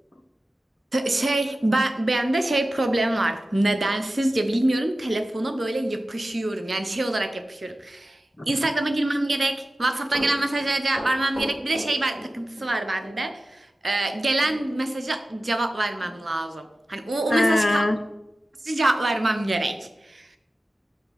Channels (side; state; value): both; normal; correlation 0.95